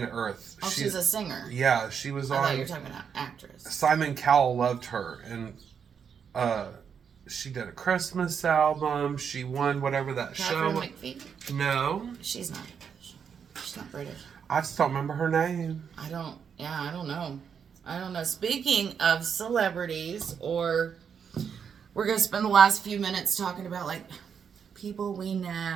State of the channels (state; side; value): quieter; left; 7.1 dB